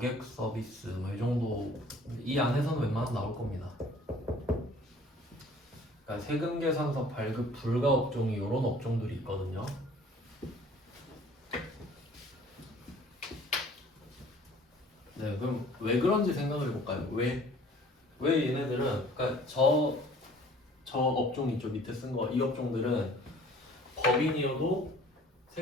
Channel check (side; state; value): both; normal; correlation 0.51